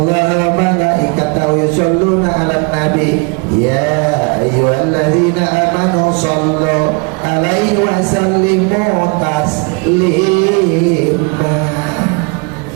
wa malaikatahu yusholluna 'alan nabi ya ayyuhalladzina amanu shallu 'alaihi wa sallimu taslima.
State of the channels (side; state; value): left; quieter; 32.3 dB